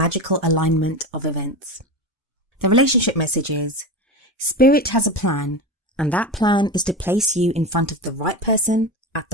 alignment of events. The relationship message is, Spirit has a plan, and that plan is to place you in front of the right person at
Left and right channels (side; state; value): both; normal; correlation 0.23